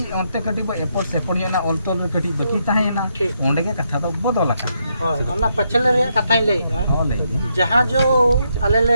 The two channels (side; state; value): both; inverted; correlation -0.78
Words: अंते कटी बो एपोर्ट सेपोर्ट ना ऑलतोल कटी बकी ताहे ना ओंडे के कथा तो बदल का होय ओना पछले रे कथा ले हो ले जहां जो आले